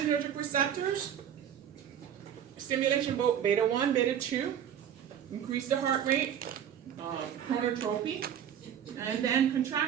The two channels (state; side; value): quieter; left; 9.3 dB